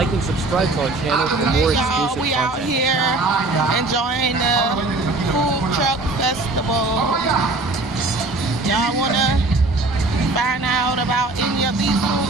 and subscribe to our channel for more exclusive we out content. here enjoying the food truck festival. Y'all wanna find out about any of these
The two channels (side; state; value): left; quieter; 3.1 dB